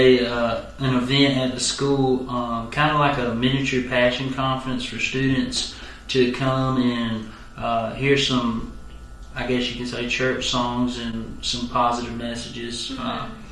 event at the school, kind of like a miniature passion conference for students to come and hear some, I guess you can say, church songs and some positive messages.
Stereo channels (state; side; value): identical; both; correlation 1.00